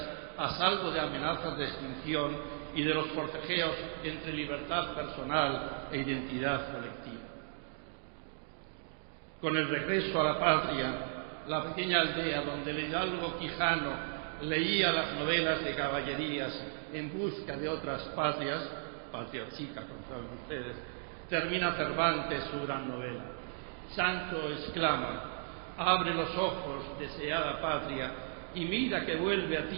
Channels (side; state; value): left; silent; digital silence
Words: a salvo de amenazas de extinción y de los forcejeos entre libertad personal e identidad colectiva. Con el regreso a la patria, la pequeña aldea donde el hidalgo Quijano leía las novelas de caballerías en busca de otras patrias, patria chica, como saben ustedes, termina Cervantes su gran novela. Sancho exclama: abre los ojos, deseada patria, y mira que vuelve a